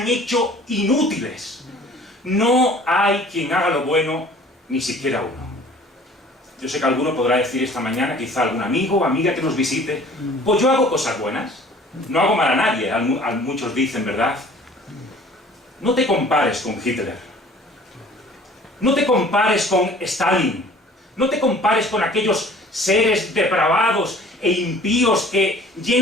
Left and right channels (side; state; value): both; normal; correlation 0.50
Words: hecho inútiles. No hay quien haga lo bueno, ni siquiera uno. Yo sé que alguno podrá decir esta mañana, quizá algún amigo o amiga que nos visite: pues yo hago cosas buenas, no hago mal a nadie. Muchos dicen, ¿verdad? No te compares con Hitler. No te compares con Stalin. No te compares con aquellos seres depravados e impíos que